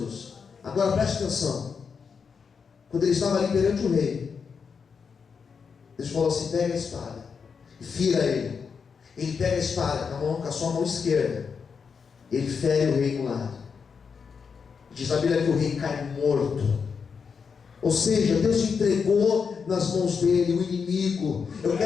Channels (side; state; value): right; quieter; 5.9 dB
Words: Agora preste atenção. Quando ele estava ali perante o rei, Deus falou assim: pega a espada e fira ele. Ele pega a espada com a sua mão esquerda. Ele fere o rei no lado. Diz a Bíblia que o rei cai morto. Ou seja, Deus entregou nas mãos dele o inimigo. Eu